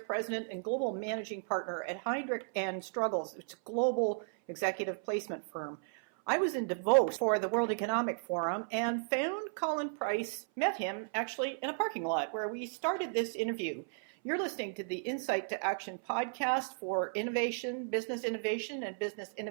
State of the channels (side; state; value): left; silent; 55 dB below the other